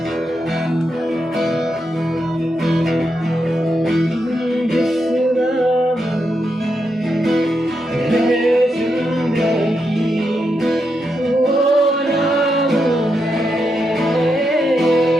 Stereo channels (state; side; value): normal; both; correlation 0.83